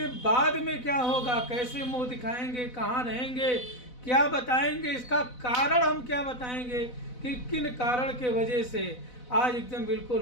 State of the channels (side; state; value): right; late; 4.0 ms